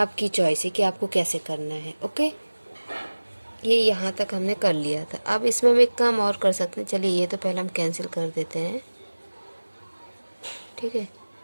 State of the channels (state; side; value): inverted; both; correlation -1.00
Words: चॉइस है कि आपको कैसे करना है। ओके, ये यहाँ तक हमने कर लिया था। अब इसमें हम एक काम और कर सकते हैं। चलिए, ये तो पहले हम कैंसिल कर देते हैं। ठीक है,